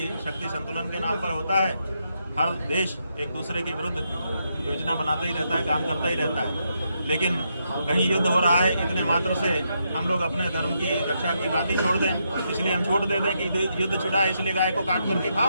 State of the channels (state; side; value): inverted; both; correlation -0.80